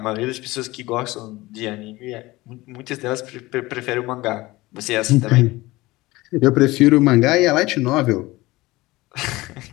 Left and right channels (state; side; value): quieter; right; 19.9 dB